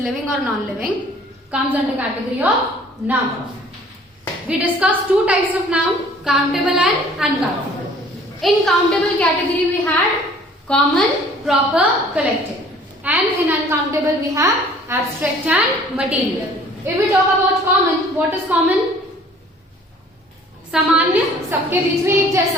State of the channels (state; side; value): normal; both; correlation 0.53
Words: or non-living, comes under category of noun. We discussed two types of noun, countable and uncountable. In countable category we had common, proper, collective, and in uncountable we have abstract and material. If we talk about common, what is common? सामान्य, सबके बीच में एक